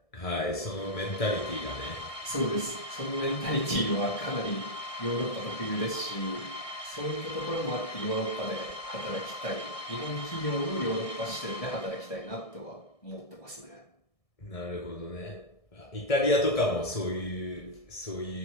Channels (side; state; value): right; late; 1.7 ms